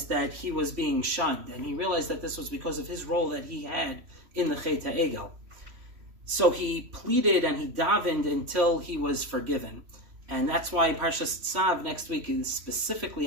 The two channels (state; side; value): late; left; 3.0 ms